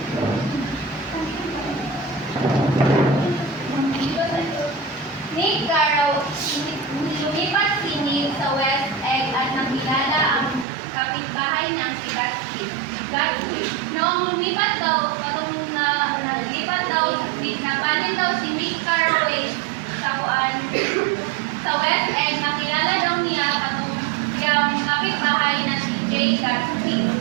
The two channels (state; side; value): drops out; left; at 10.7 s